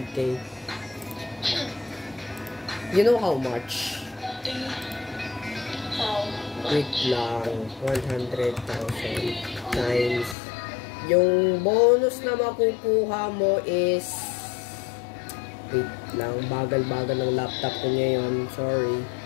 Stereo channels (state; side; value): drops out; right; at 10.4 s